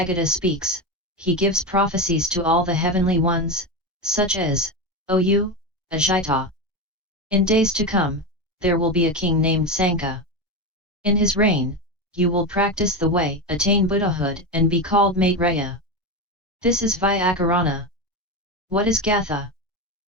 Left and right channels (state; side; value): normal; both; correlation 0.16